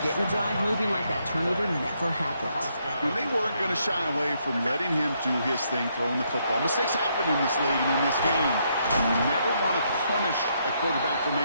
Getting the drive moving like that turnover never happened. And they weren't going to shy away from letting him do his thing, throwing the football. Mistakes happen in this league and in this game. And you never want to punish a quarterback for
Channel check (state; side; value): inverted; both; correlation -0.75